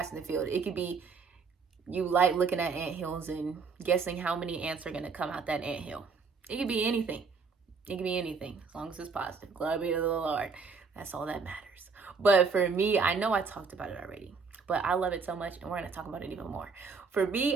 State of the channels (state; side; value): quieter; left; 5.0 dB